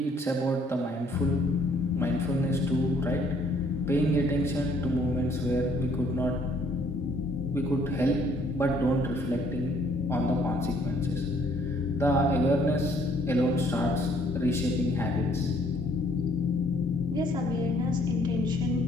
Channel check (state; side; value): normal; both; correlation 0.63